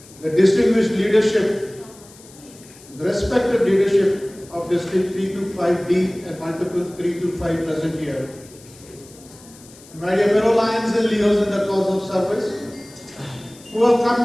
the distinguished leadership, the respected leadership of District 325D and multiple 325 present here. My dear fellow Lions and Leos in the cause of service, who have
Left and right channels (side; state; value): left; noise; hiss, 23 dB below the sound